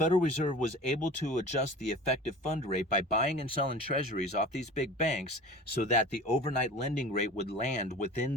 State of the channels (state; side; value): normal; both; correlation 0.39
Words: Reserve was able to adjust the effective fund rate by buying and selling treasuries off these big banks so that the overnight lending rate would land